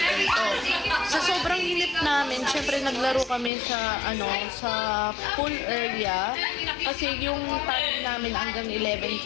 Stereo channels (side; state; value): right; drops out; at 3.5 s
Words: Sa sobrang init namin, syempre naglaro kami sa sa pool area kasi yung time namin hanggang 11